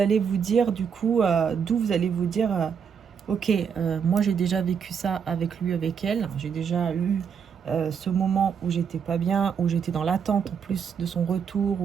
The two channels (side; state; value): left; quieter; 6.9 dB